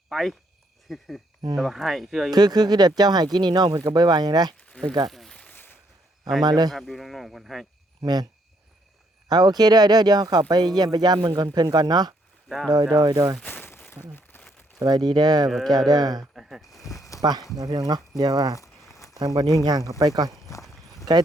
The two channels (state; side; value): normal; both; correlation 0.72